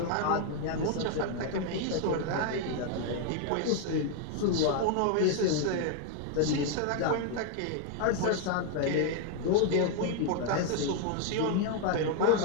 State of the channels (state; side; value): different; both; correlation 0.00